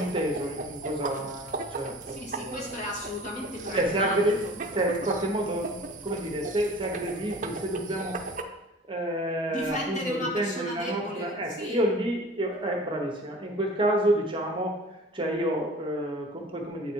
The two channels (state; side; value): normal; both; correlation 0.43